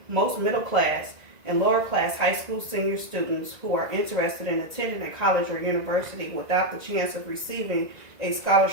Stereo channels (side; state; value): left; late; 2.0 ms